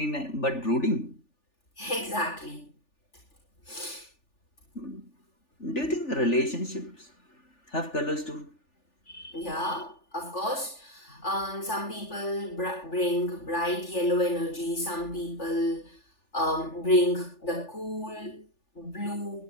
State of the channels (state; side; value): late; right; 3.4 ms